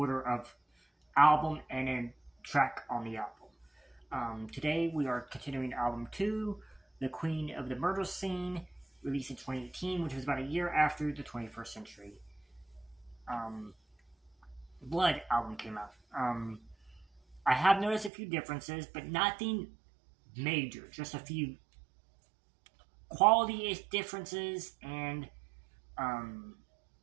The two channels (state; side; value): drops out; left; at 18.1 s